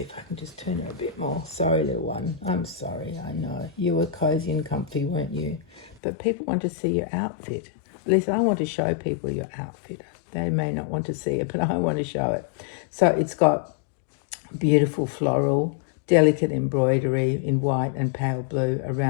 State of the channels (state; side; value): drops out; right; at 6.0 s